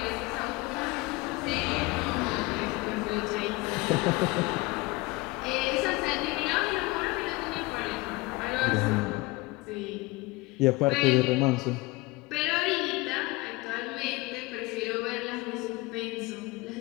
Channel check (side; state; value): right; quieter; 23.1 dB